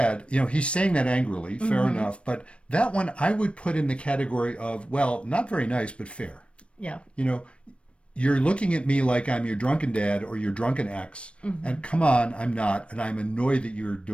He's saying that angrily, fair enough. But that one I would put in the category of, well, not very nice, but fair. Yeah. You're looking at me like I'm your drunken dad or your drunken ex, and come on, I'm not, and I'm annoyed that you're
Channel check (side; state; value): right; late; 0.060 ms